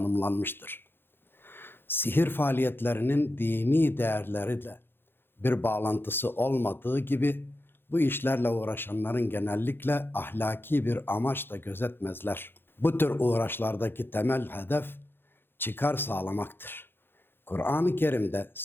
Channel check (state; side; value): late; right; 0.10 ms